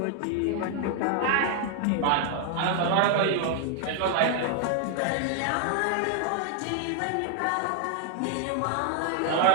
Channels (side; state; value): both; different; correlation 0.00